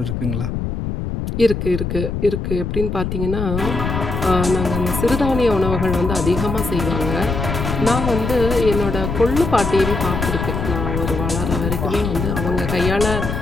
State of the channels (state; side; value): noise; left; rumble, 3 dB below the sound